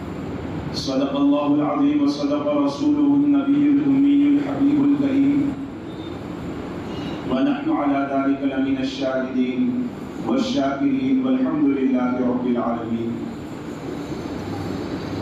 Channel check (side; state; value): both; identical; correlation 1.00